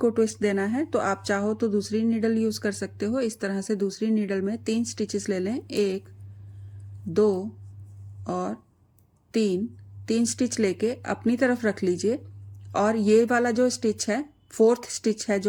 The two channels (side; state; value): both; identical; correlation 1.00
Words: ट्विस्ट देना है। तो आप चाहो तो दूसरी नीडल यूज कर सकते हो। इस तरह से दूसरी नीडल में 3 स्टिचेस ले लें, 1, 2 और 3 स्टिच लेके अपनी तरफ रख लीजिए। और ये वाला जो स्टिच है, 4th स्टिच है